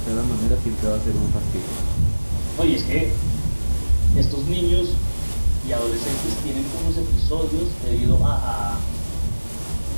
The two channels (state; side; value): inverted; both; correlation -1.00